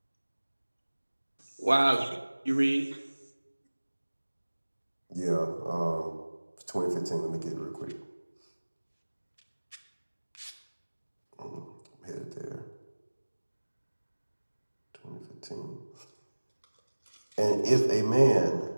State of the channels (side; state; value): both; inverted; correlation -1.00